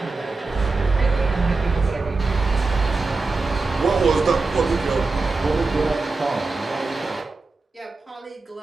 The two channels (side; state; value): left; quieter; 3.7 dB